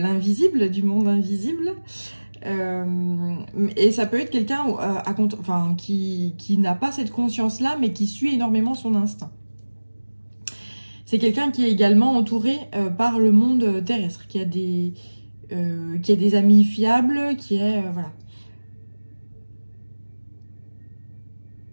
du monde invisible. Et ça peut être quelqu'un qui n'a pas cette conscience-là, mais qui suit énormément son instinct. C'est quelqu'un qui est également entouré par le monde terrestre, qui a des amis fiables, voilà.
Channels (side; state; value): both; inverted; correlation -1.00